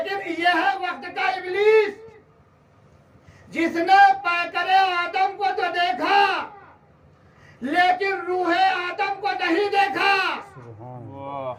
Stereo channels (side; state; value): both; identical; correlation 1.00